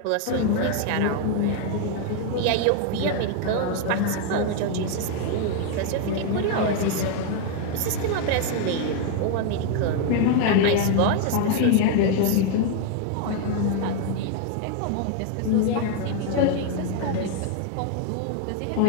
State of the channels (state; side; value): different; both; correlation 0.00